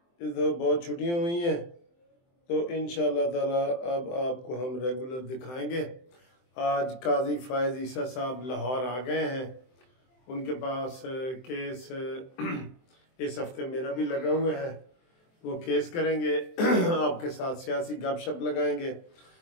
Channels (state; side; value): late; right; 23 ms